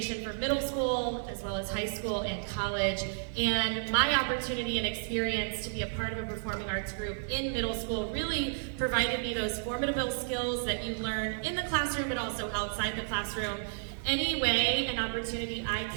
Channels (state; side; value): silent; left; 57 dB below the other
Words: for middle school as well as high school and college. And my opportunity and experience to be a part of a performing arts group in middle school really provided me those formidable skills that you learn in the classroom but also outside the classroom. Any way and opportunity I